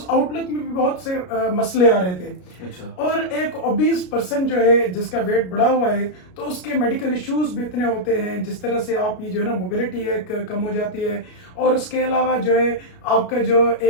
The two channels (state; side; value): late; right; 33 ms